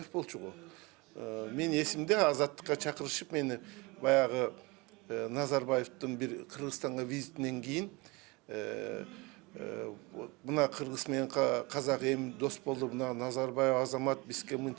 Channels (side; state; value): left; quieter; 25.1 dB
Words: болчу го. Мен эсимде азаттыкка чакырышып мени баягы Назарбаевдин бир Кыргызстанга визитинен кийин мына кыргыз менен казак эми дос болду, мына Назарбаев азамат бизге